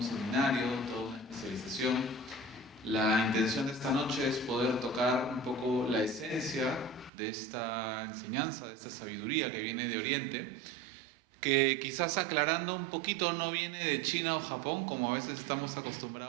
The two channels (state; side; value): drops out; left; at 7.1 s